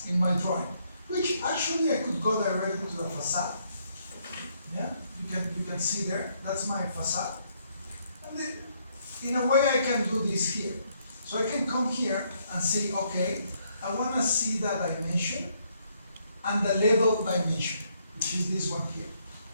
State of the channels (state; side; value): inverted; both; correlation -0.71